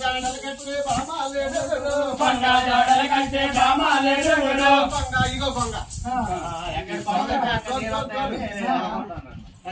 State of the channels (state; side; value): identical; both; correlation 1.00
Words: జాడలు కట్టి బామాలేడు కొండ జాడలు కట్టి బామాలేడుగులు కొంగ ఇగో కొంగ